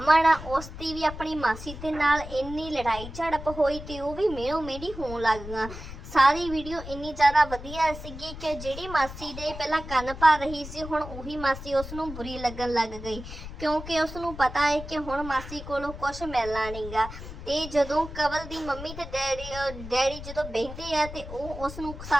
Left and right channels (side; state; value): left; noise; rumble, 11 dB below the sound